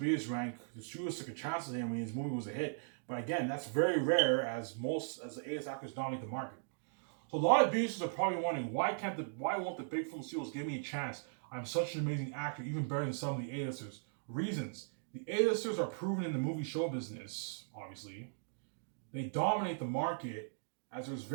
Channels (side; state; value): left; silent; digital silence